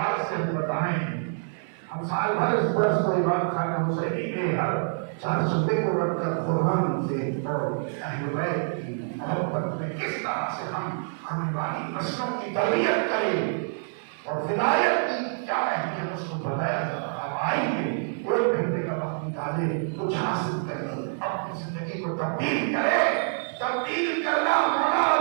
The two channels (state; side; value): silent; left; digital silence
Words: سے ہم بتائیں. ہم سال بھر اس برس کو امام خان حسینی کے ہر 4 صوبے کو رکھ کر قرآن سے اور اہل بیت کی محبت میں کس طرح سے ہم آنے والی نسلوں کی تربیت کریں اور ولایت کی کیا اہمیت اس کو بتایا جاتا. اب آئیے 1 گھنٹے کا وقت نکالے، کچھ حاصل کریں، اپنی زندگی کو تبدیل کرے. تبدیل کرنا مولا